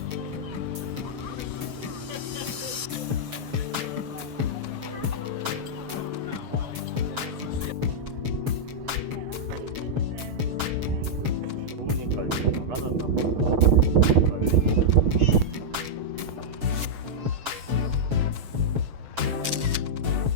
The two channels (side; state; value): left; late; 7.2 ms